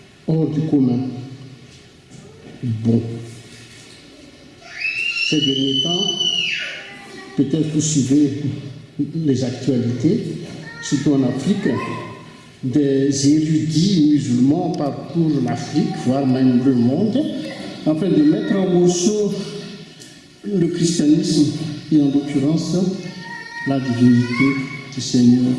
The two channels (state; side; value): identical; both; correlation 1.00